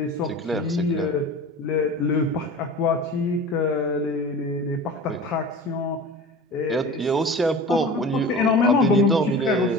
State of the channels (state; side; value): normal; both; correlation 0.36